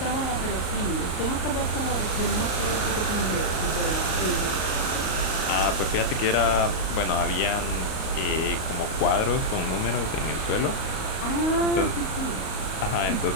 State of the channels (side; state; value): right; late; 38 ms